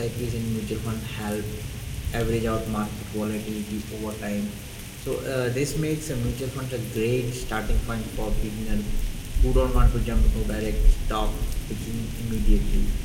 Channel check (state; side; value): identical; both; correlation 1.00